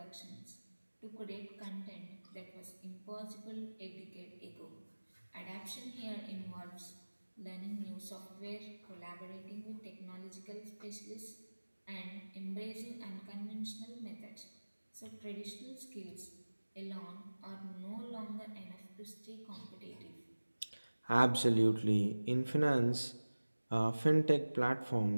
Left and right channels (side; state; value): both; inverted; correlation -1.00